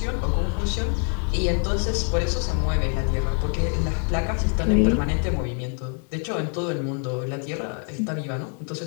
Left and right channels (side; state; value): right; quieter; 38.7 dB